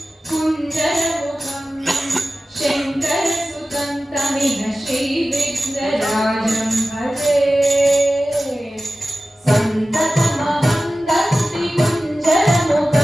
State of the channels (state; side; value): normal; both; correlation 0.95